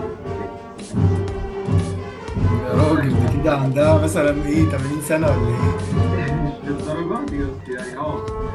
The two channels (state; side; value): identical; both; correlation 1.00